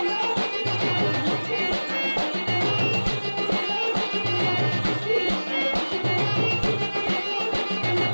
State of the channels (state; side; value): inverted; both; correlation -1.00